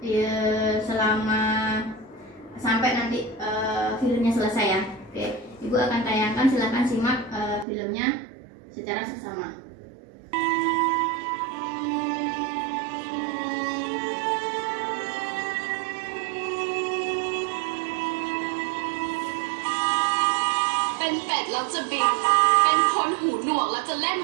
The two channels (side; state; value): left; drops out; at 7.7 s